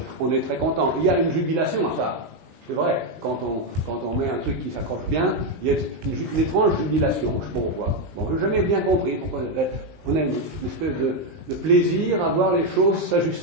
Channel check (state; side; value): late; left; 19 ms